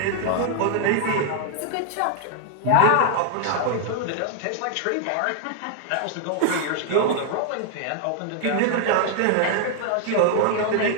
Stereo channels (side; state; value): both; different; correlation 0.00